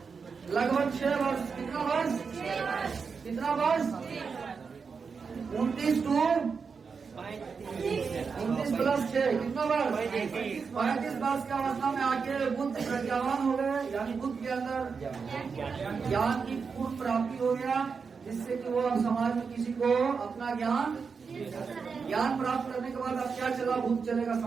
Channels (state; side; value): quieter; left; 5.4 dB